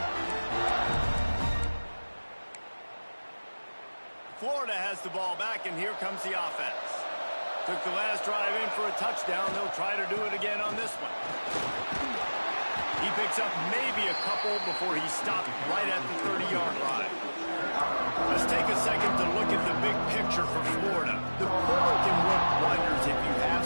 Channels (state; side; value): inverted; both; correlation -1.00